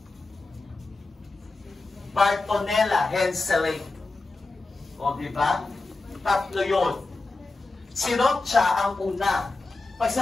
Bartonella henselae. O, diba? Tatlo yun. Si Rocha ang una. Pag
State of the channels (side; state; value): right; quieter; 3.4 dB